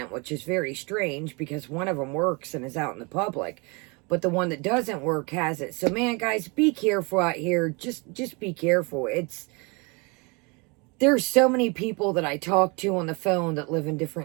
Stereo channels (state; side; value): quieter; left; 29.8 dB